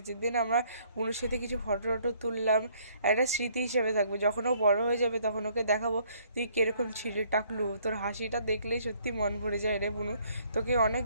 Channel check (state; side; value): inverted; both; correlation -0.63